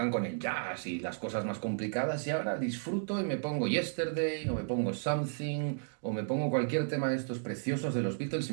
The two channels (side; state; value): left; silent; digital silence